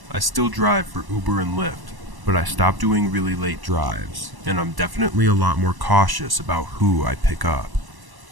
I still drive for Uber and Lyft, but I stopped doing really late drives, and I'm definitely a lot more cautious about who I pick up.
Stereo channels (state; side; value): late; left; 1.1 ms